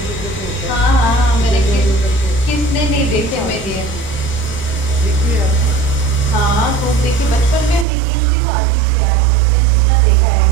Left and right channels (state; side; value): drops out; left; at 7.9 s